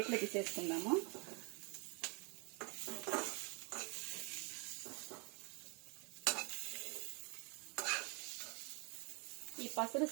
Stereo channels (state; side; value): quieter; left; 32.1 dB